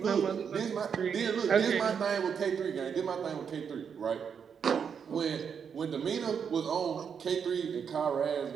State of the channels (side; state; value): left; quieter; 7.0 dB